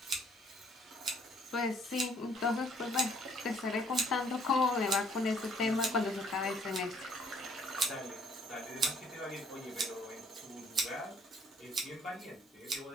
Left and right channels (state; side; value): normal; both; correlation 0.60